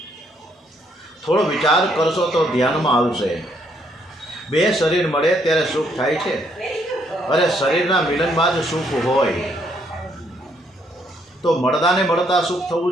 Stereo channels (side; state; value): both; normal; correlation 0.71